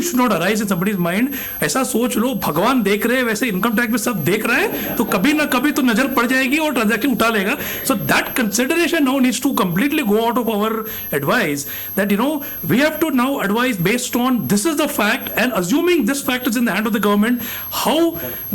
should not arise in somebody's mind. ऐसा सोच लो, भगवान देख रहे हैं वैसे income tax में सब देख रहा है, तो कभी ना कभी तो नजर पड़ जाएगी और ट्रांजैक्शन उठा लेगा. So that consideration now needs to completely go out of our advice, that, you know, we have to now advise based on this is the fact, and assuming this fact is in the hand of the government, how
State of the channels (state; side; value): identical; both; correlation 1.00